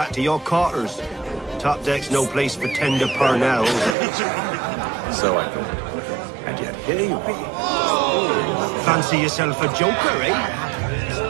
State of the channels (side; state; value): left; drops out; at 4.0 s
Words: to your quarters. Top deck's no place for tender parnells. So I thought. And yet here you are. Fancy yourself a joker,